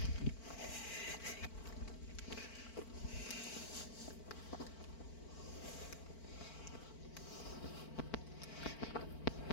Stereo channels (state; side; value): late; right; 4.5 ms